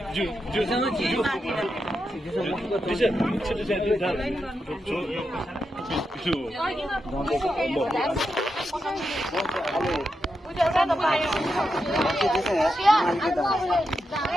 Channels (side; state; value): both; normal; correlation 0.86